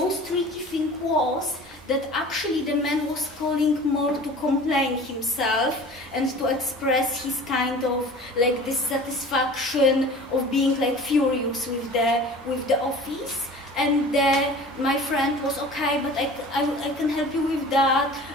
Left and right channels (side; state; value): both; normal; correlation 0.42